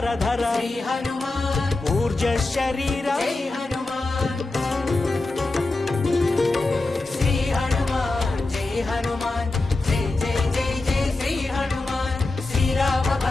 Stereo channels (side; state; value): right; quieter; 3.1 dB